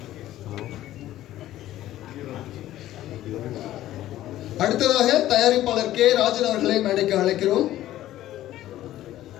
அடுத்ததாக தயாரிப்பாளர் கே ராஜன் அவர்களை மேடைக்கு அழைக்கிறோம்.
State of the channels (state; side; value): quieter; right; 14.0 dB